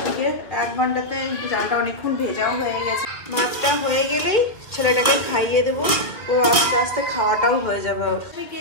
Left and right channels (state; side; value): late; right; 2.3 ms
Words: দিকে, 1 ঘন্টাতে চালটা অনেকক্ষণ ভেজাও হয়ে গেছে। ভাতটা হয়ে গেলেই ছেলেটাকে খাইয়ে দেবো, ও আস্তে আস্তে খাওয়াটাও হয়ে যাবে ওর। কে